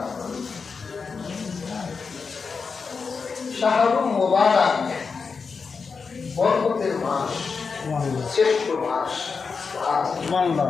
শাহরুল মুবারক, বরকতের মাস, শ্রেষ্ঠ মাস।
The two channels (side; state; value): right; quieter; 5.1 dB